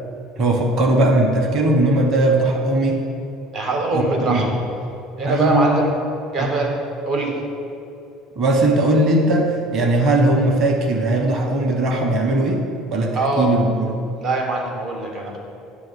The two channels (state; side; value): normal; both; correlation 0.47